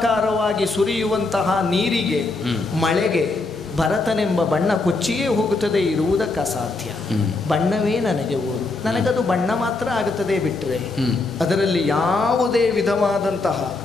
ಸುರಿಯುವಂತಹ ನೀರಿಗೆ, ಮಳೆಗೆ ಭರತನೆಂಬ ಬಣ್ಣ ಕೊಚ್ಚಿಯೇ ಹೋಗುತ್ತದೆ, ಇರುವುದಕ್ಕೆ ಅಸಾಧ್ಯ. ಬಣ್ಣವೇ ನನಗೆ ಊರು, ನನಗದು ಬಣ್ಣ ಮಾತ್ರ ಆಗುತ್ತದೆ ಬಿಟ್ಟರೆ ಅದರಲ್ಲಿ ಯಾವುದೇ ವಿಧವಾದಂತಹ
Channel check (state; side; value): quieter; right; 3.4 dB